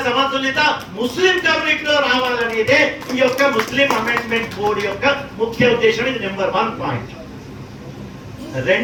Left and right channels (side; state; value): both; identical; correlation 1.00